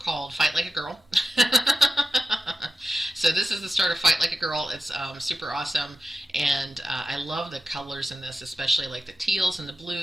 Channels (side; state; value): both; normal; correlation 0.93